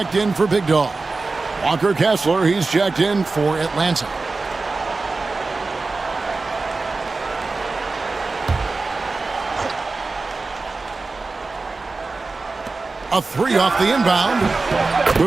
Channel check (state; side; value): quieter; left; 3.7 dB